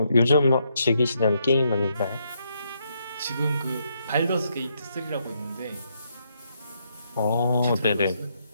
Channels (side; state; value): both; inverted; correlation -0.77